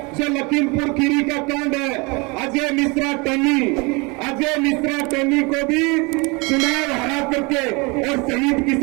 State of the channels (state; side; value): quieter; left; 28.2 dB